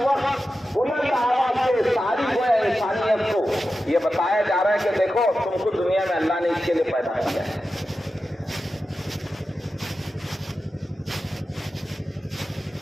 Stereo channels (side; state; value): both; normal; correlation 0.92